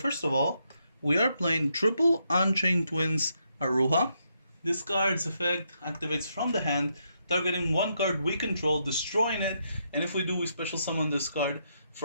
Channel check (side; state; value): both; inverted; correlation -0.79